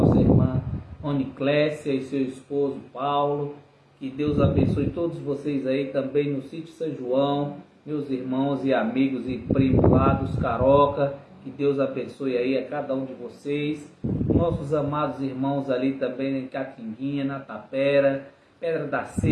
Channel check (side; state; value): both; identical; correlation 1.00